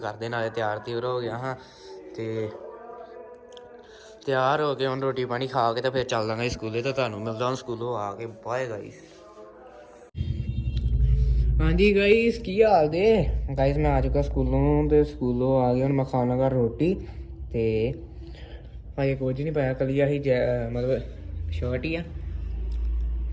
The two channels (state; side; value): identical; both; correlation 1.00